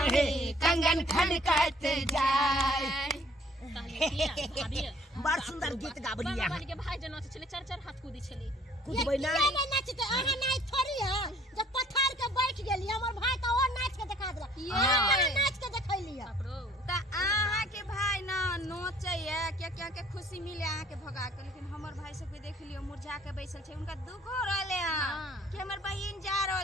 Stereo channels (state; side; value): normal; both; correlation 0.56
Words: कंगन खनकत जाए बड़ सुंदर गीत गाबली यहाँ के भाई जना छले चार चार हाथ कूदी छले कूदबै ना ये नहीं नाचते अहाँ नाच थोड़ी है जब पत्थर के बैठ गेली हमर भाई तो और नाच के दिखा देला अहाँ नाच के देखैली है त आहा के भाई ना नोचे है क्या के खुशी मिले आहा के भगा के लेकिन हमर भाई सब के देख लियो मुरझा के बैसल छे उनका दुख हो रहले हां कि हमर बहिन जा